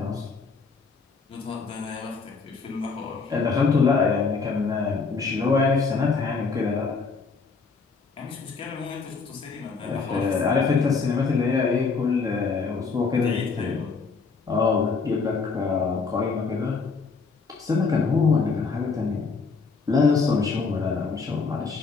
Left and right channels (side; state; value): right; quieter; 4.7 dB